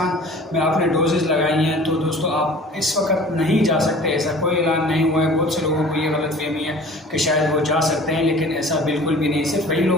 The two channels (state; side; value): normal; both; correlation 0.45